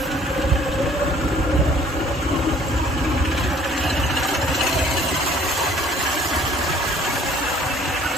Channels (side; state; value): both; normal; correlation 0.56